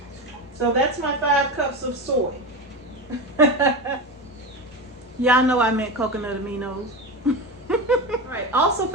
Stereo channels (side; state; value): both; normal; correlation 0.22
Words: So that's my 5 cups of soy. Y'all know I meant coconut aminos. Alright, also